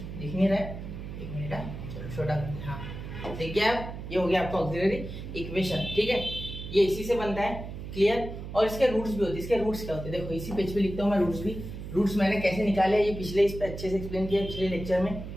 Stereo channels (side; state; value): right; noise; hum, 9 dB below the sound